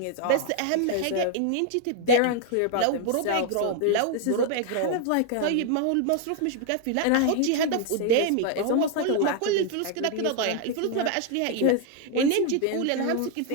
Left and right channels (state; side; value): different; both; correlation 0.00